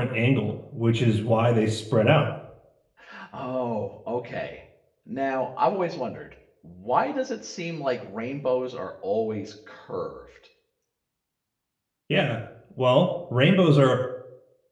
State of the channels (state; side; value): identical; both; correlation 1.00